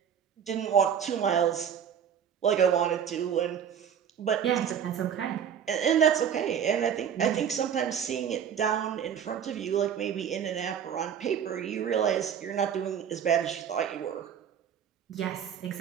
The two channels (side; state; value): left; quieter; 8.4 dB